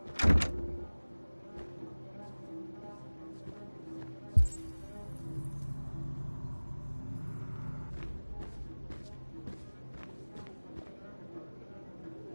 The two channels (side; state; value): both; inverted; correlation -1.00